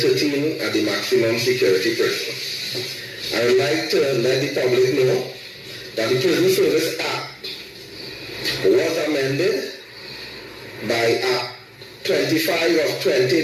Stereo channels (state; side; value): identical; both; correlation 1.00